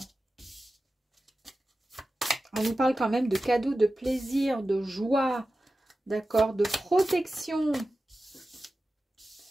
On nous parle quand même de cadeaux, de plaisir, de joie, d'accord, de protection.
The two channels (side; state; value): both; normal; correlation 0.94